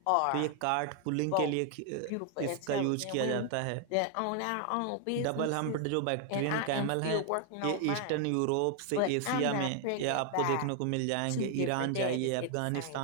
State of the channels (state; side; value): different; both; correlation 0.00